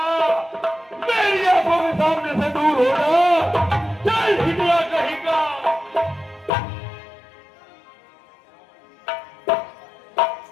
मेरी आंखों के सामने से दूर हो जा, चल हिटला कहीं का।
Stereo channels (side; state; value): right; drops out; at 6.5 s